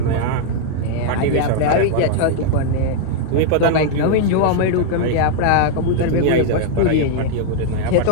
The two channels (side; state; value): both; different; correlation -0.01